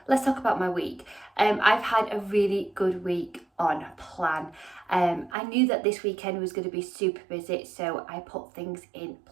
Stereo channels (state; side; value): drops out; left; at 5.4 s